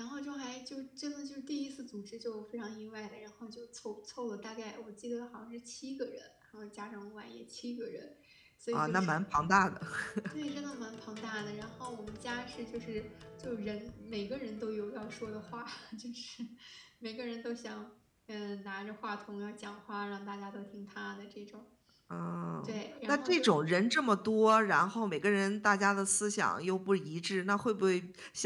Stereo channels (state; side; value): identical; both; correlation 1.00